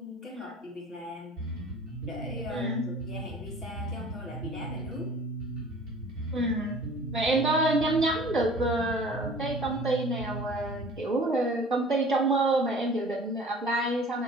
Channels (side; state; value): both; normal; correlation 0.46